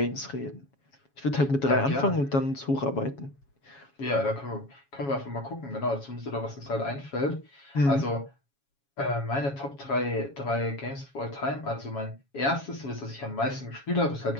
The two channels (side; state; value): right; late; 7.2 ms